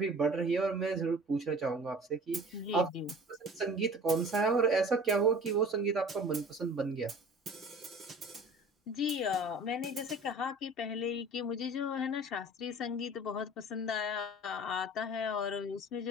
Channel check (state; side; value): normal; both; correlation 0.43